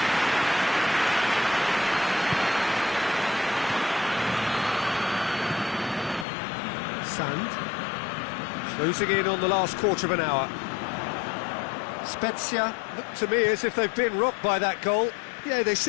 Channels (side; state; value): right; drops out; at 6.2 s